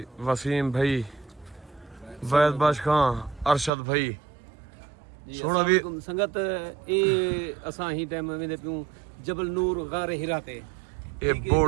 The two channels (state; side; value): drops out; left; at 3.7 s